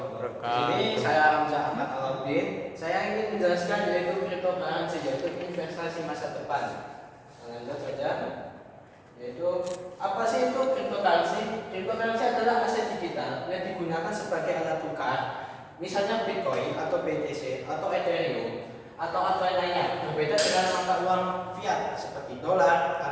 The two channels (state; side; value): identical; both; correlation 1.00